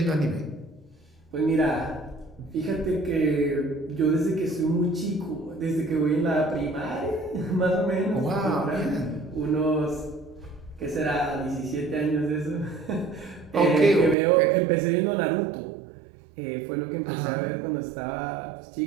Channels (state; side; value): drops out; left; at 14.2 s